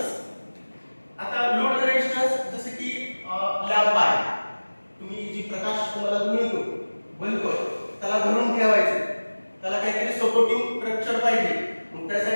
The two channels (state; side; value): inverted; both; correlation -1.00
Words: आता लोड रेजिस्टन्स जसे की लॅम्प आहे, तुम्ही जी प्रकाश तुम्हाला मिळतो बल्ब, त्याला धरून ठेवायचे, त्याला काहीतरी सपोर्टिंग स्ट्रक्चर पाहिजे. मग